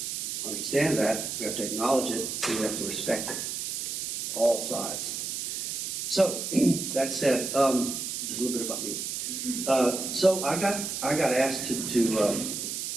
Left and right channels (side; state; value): right; noise; hiss, 3 dB below the sound